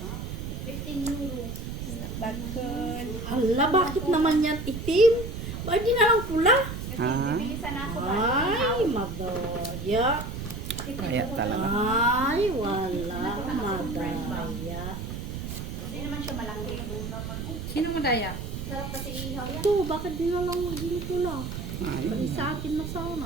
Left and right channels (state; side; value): noise; right; rumble, 6 dB below the sound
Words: 15 euro. Stakol. Hala, bakit naman yan itim? Bakit di na lang pula? Ha? Bilisan na ako ba? Ay, madaya. Kaya talaga. Ay, wala. Madaya. Hindi naman siya malaki. Sino madaya? Sarap kasi ihaw yan. Ito, bakit di na lang hindi pula? Ay, Bali sa akin na